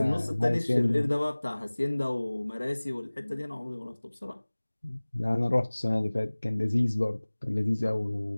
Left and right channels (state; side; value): inverted; both; correlation -1.00